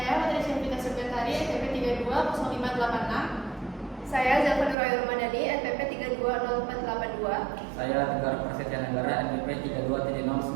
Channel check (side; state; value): left; drops out; at 4.8 s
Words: Materi Syafita Subyatari, NPP 320586. Saya Zafar Nurul Ramadhani, NPP 320482. Saya Tegar Prasetya Negara, NPP